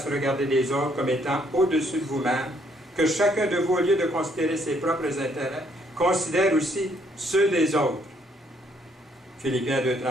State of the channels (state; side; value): normal; both; correlation 0.68